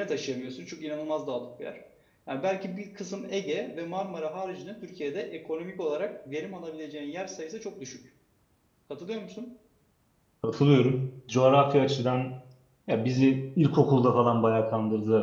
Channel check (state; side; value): identical; both; correlation 1.00